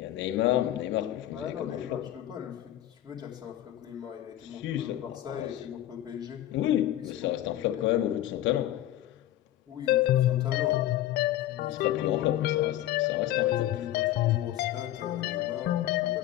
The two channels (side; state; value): right; quieter; 13.5 dB